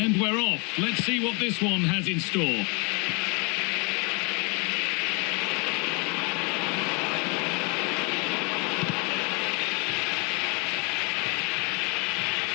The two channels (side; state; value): right; quieter; 32.7 dB